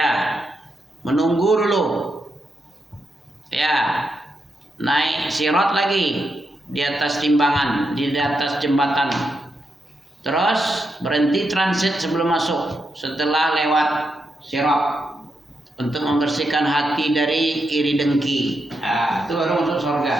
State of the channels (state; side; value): normal; both; correlation 0.84